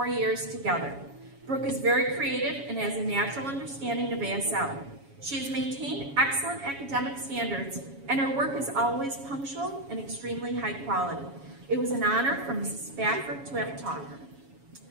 years together. Brooke is very creative and has a natural understanding of ASL. She has maintained excellent academic standards, and her work is always punctual and extremely high quality. It was an honor for Mrs. Spafford to have taught her.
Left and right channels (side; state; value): left; late; 7.2 ms